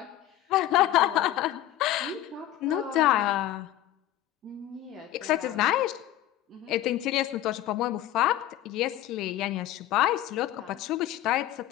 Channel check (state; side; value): quieter; right; 13.3 dB